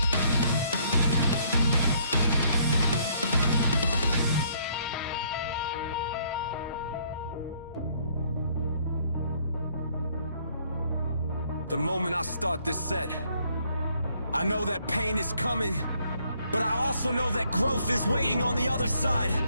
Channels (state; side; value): inverted; both; correlation -0.66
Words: The moment I start this set, I know that pain is coming, but I also know that growth is waiting on the other side.